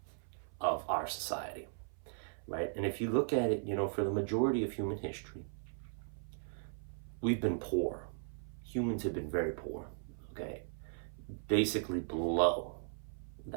of our society, right? And if you look at it, for the majority of human history, we've been poor. Humans have been very poor, okay? Basically below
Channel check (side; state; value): left; silent; 53 dB below the other